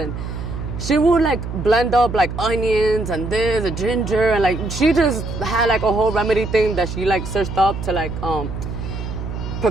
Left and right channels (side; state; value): right; noise; hum, 6 dB below the sound